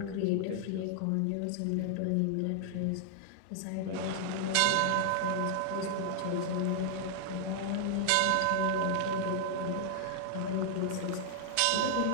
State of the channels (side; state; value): both; different; correlation 0.00